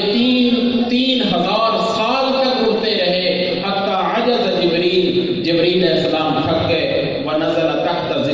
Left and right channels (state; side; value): identical; both; correlation 1.00